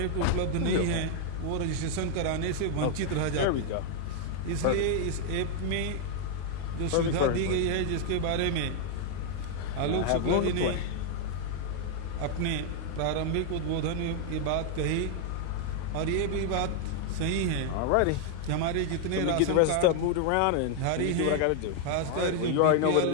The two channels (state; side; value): different; both; correlation 0.00